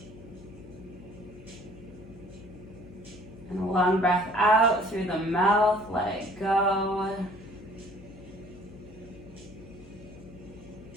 And a long breath out through the mouth, let it go.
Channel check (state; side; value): noise; left; hum, 18 dB below the sound